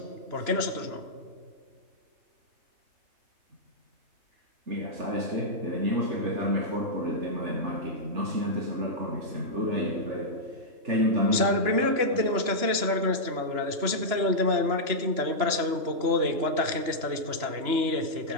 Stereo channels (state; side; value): late; left; 3.0 ms